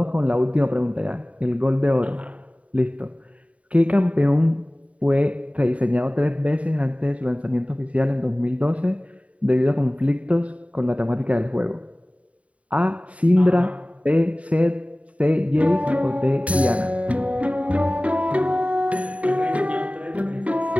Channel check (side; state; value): left; late; 0.066 ms